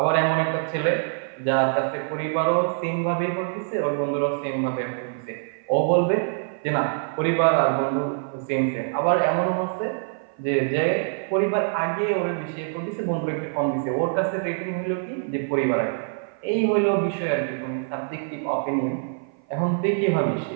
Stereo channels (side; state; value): left; silent; 56 dB below the other